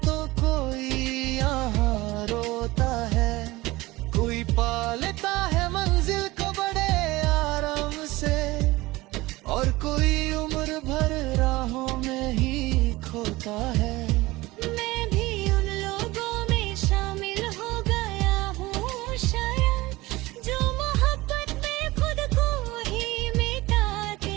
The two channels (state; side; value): quieter; left; 20.0 dB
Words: तो कोई यहाँ रोता है, कोई पा लेता है मंजिल को बड़े आराम से, और कोई उम्र भर राहों में ही खोता है। मैं भी उन लोगों में शामिल हो गया हूँ शायद, जो मोहब्बत में खुद को ही मिटा